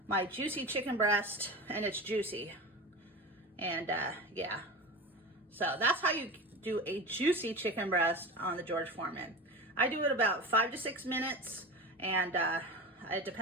my juicy chicken breast, and it's juicy. And yeah, so that's how you do a juicy chicken breast on the George Foreman. I do it about 5 to 6 minutes, and it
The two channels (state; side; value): normal; both; correlation 0.28